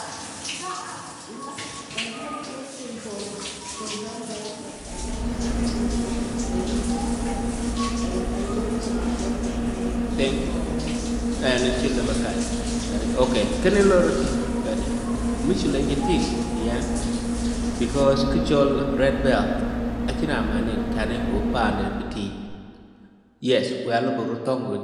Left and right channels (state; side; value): identical; both; correlation 1.00